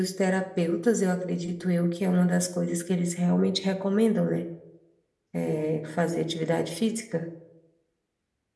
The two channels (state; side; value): identical; both; correlation 1.00